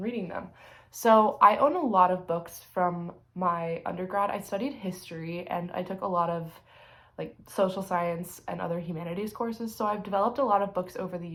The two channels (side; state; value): both; identical; correlation 1.00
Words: reading them. So I own a lot of books from my undergrad. I studied history and I took a lot of social science and other humanities courses. So I've developed a lot of books over the